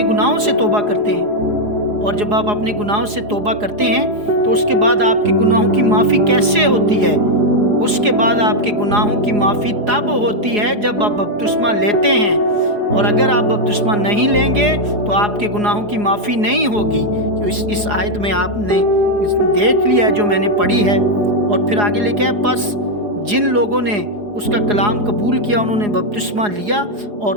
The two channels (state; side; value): late; left; 4.8 ms